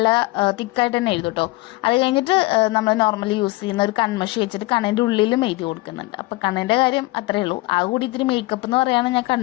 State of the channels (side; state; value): right; quieter; 21.0 dB